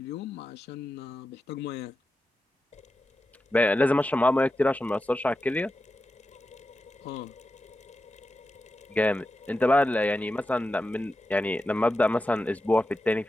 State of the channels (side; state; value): both; normal; correlation 0.91